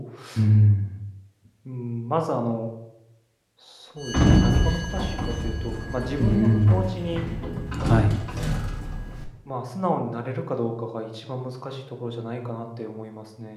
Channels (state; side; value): identical; both; correlation 1.00